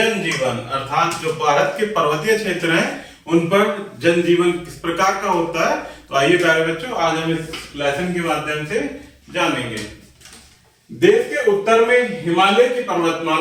अर्थात जो भारत के पर्वतीय क्षेत्र हैं उन पर जनजीवन किस प्रकार का होता है। तो आइए प्यारे बच्चों, आज हम इस लेसन के माध्यम से जानेंगे। देश के उत्तर में हिमालय की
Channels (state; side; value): identical; both; correlation 1.00